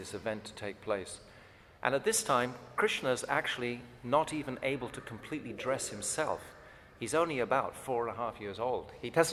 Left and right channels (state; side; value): identical; both; correlation 1.00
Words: event to take place. And at this time, Krishna is actually not even able to completely dress himself. He's only about 4.5 years old. He